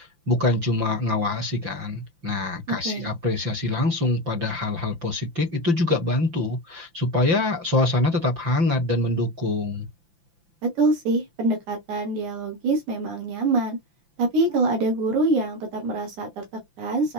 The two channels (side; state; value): left; late; 5.9 ms